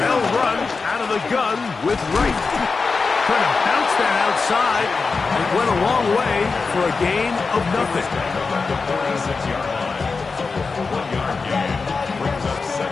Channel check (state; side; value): quieter; right; 4.5 dB